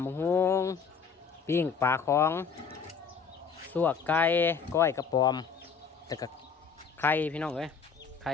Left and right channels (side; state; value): right; quieter; 6.1 dB